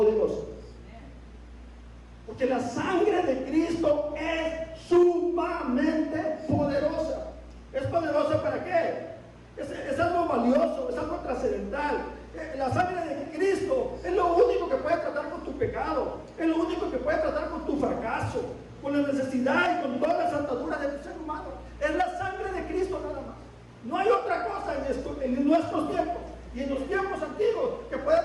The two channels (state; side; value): identical; both; correlation 1.00